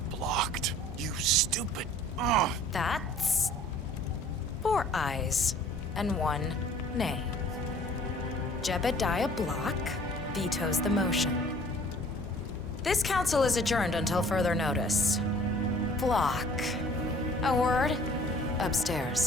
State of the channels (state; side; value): normal; both; correlation 0.52